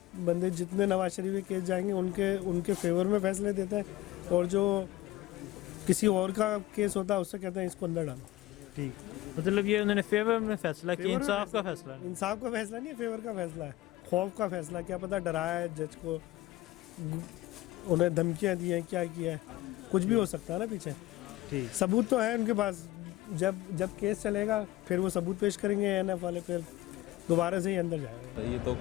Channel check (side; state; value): right; quieter; 16.6 dB